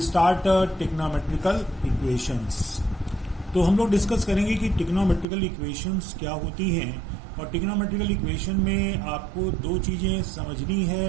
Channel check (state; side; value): drops out; left; at 5.2 s